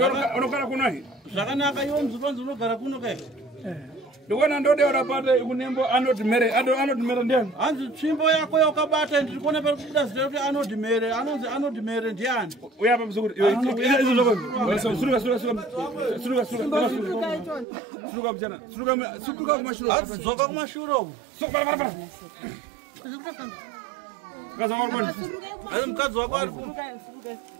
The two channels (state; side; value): drops out; left; at 17.7 s